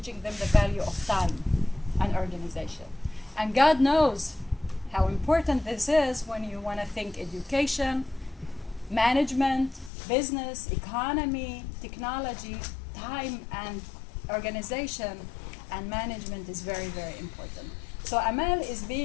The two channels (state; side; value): drops out; right; at 9.9 s